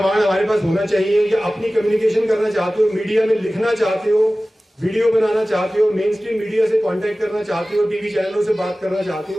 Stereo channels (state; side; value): normal; both; correlation 0.97